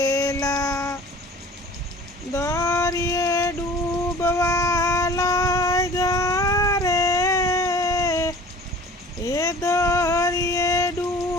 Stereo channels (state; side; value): normal; both; correlation 0.45